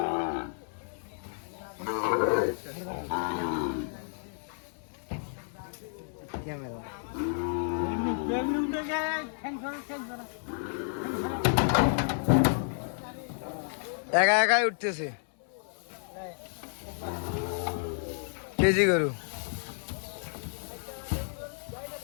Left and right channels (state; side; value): silent; right; digital silence